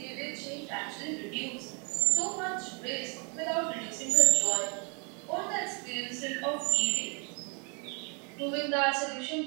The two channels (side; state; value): left; quieter; 36.1 dB